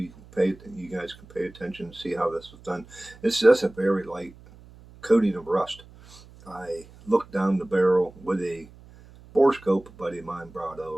guys can pay attention and see how this is done. It's just a very light coating of rust. I looked down the barrel with a bore scope a buddy of mine brought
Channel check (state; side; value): noise; right; hum, 22 dB below the sound